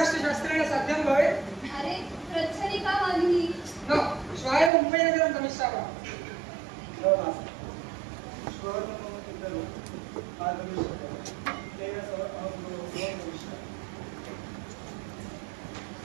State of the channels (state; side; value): drops out; left; at 4.7 s